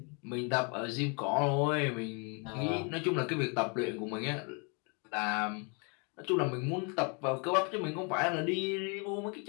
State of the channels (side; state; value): right; quieter; 35.0 dB